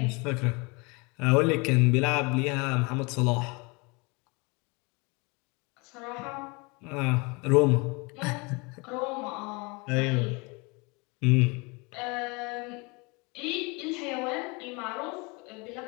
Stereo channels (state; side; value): quieter; right; 28.5 dB